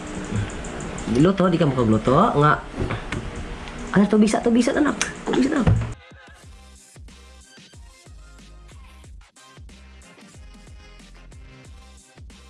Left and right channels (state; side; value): identical; both; correlation 1.00